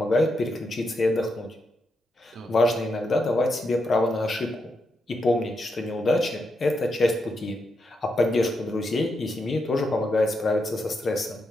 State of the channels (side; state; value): both; normal; correlation 0.83